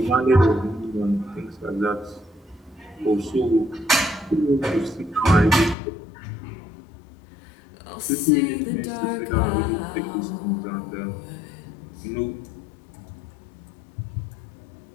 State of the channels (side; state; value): right; drops out; at 5.8 s